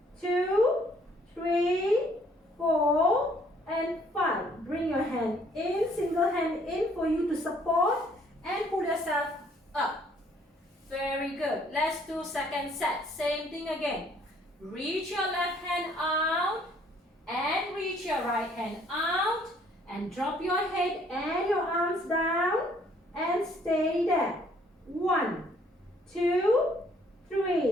2, 3, 4, and 5. Bring your hand in, single hand in for you to support and pull yourself up. Very good. Let's do second set. Same thing again. Reach your left hand out and reach your right hand out and drop your head and your arms down and stay there. 1, 2,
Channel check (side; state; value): both; normal; correlation 0.63